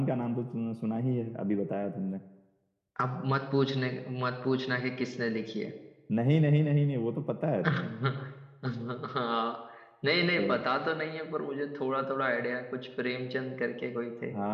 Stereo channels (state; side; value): identical; both; correlation 1.00